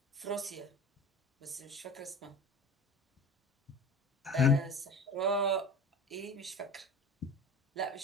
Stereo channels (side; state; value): both; normal; correlation 0.36